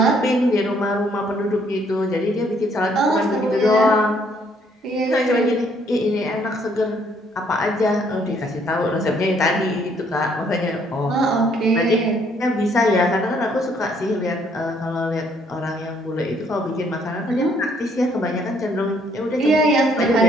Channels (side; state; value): both; normal; correlation 0.66